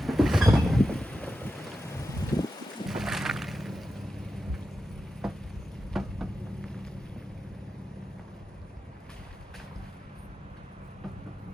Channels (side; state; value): both; normal; correlation 0.91